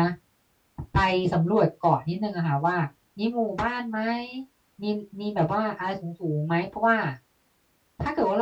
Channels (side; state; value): both; identical; correlation 1.00